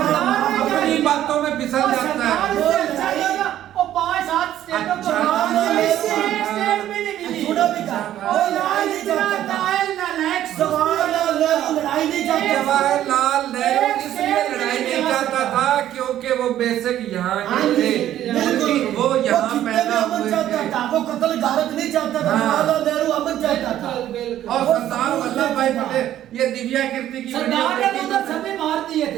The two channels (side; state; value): left; quieter; 12.1 dB